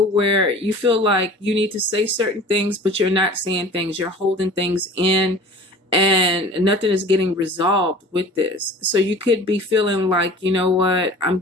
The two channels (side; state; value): both; normal; correlation 0.43